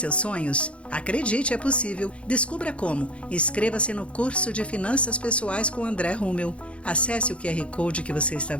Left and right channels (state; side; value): late; right; 0.060 ms